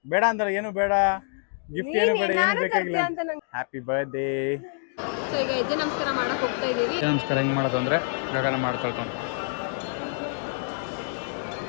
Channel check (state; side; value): silent; right; digital silence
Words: ಬೇಡ ಅಂದ್ರೆ ಏನು ಬೇಡ, ಗಿಫ್ಟ್ ಏನು ಬೇಡ, ಏನು ಬೇಕಾಗಿಲ್ಲ. Happy birthday. ಸೊ ಈಗ ಹೆಜ್ಜೆ ನಮಸ್ಕಾರ ಮಾಡಕ್ ಹೋಗ್ತಾ ಇದೀವಿ. ನಮಸ್ಕಾರ ಹೆಂಗ್ ಮಾಡೋದು ಅಂದ್ರೆ ಗಗನ ಮಾಡ್ಕೊಳ್ತಾನೆ.